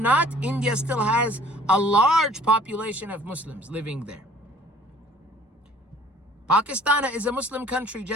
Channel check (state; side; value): normal; both; correlation 0.54